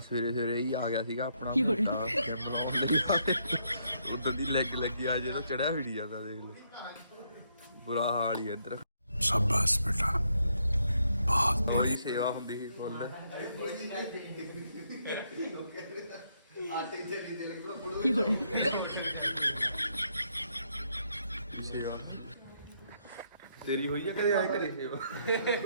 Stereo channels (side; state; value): both; inverted; correlation -0.74